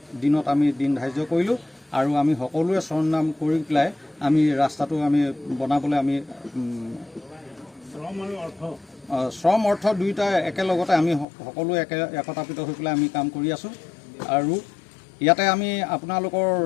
দিনত আমি দিন ধাৰ্য কৰিলোঁ আৰু আমি সকলোৱে শ্ৰমদান কৰি পেলাই আমি ৰাস্তাটো আমি বনাবলৈ আমি শ্ৰম অৰ্থ দুয়োটা একেলগতে আমি সকলোৱে একতাপিত হৈ পেলাই আমি কাম কৰি আছোঁ। আৰু ইয়াতে আমি আপোনালোকৰ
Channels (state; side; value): drops out; right; at 11.2 s